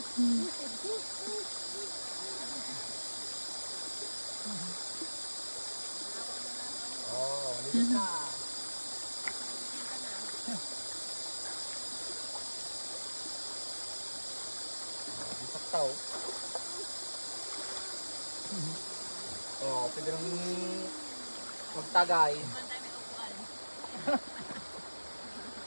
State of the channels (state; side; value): inverted; both; correlation -1.00